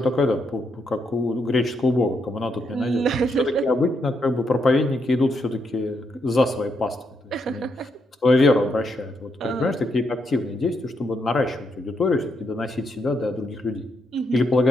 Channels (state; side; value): normal; both; correlation 0.79